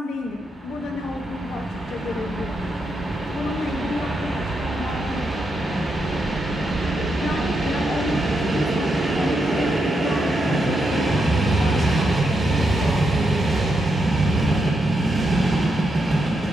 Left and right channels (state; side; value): normal; both; correlation 0.83